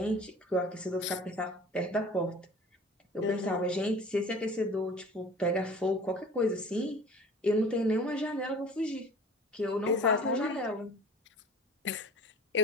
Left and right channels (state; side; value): normal; both; correlation 0.44